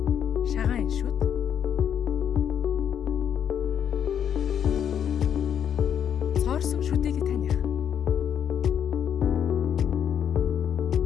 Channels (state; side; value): quieter; right; 8.7 dB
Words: Шагаан шүд. Цоорсон шүдийг таних.